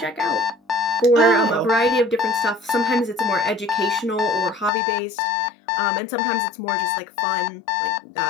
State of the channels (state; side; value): drops out; right; at 4.7 s